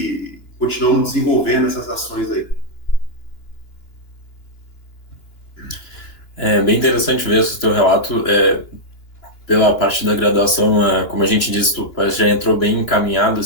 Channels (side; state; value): right; late; 2.9 ms